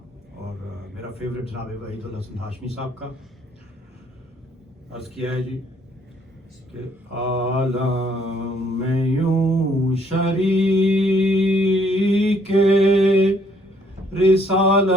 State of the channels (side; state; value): both; normal; correlation 0.66